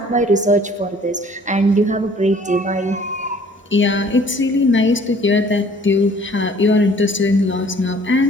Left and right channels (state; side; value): normal; both; correlation 0.55